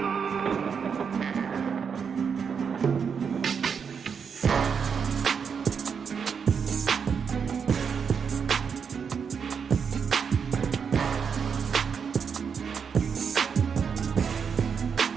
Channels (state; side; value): quieter; left; 6.5 dB